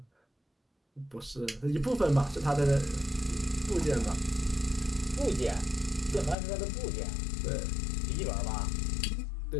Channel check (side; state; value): right; drops out; at 6.4 s